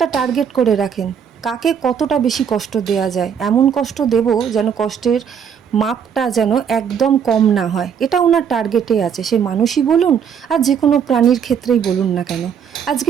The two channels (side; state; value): left; quieter; 7.6 dB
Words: টার্গেট করে রাখেন, কাকে কতটা বেশি কষ্ট দেয়া যায়। এমন কষ্ট দেব যেন কষ্টের মাপটা যেন একদম কম না হয়, এটা ওনার টার্গেটে আছে। সে মানুষই বলুন আর যে কোনো প্রাণীর ক্ষেত্রেই বলুন না কেন। আজকে